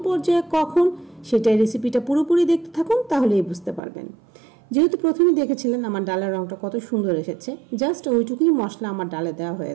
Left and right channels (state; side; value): drops out; left; at 3.8 s